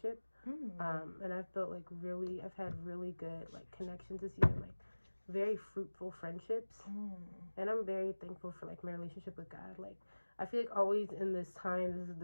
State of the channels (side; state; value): both; inverted; correlation -1.00